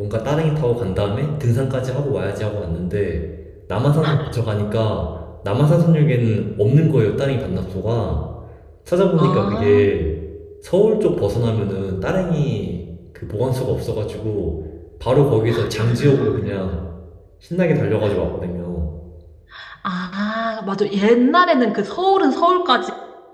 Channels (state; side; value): identical; both; correlation 1.00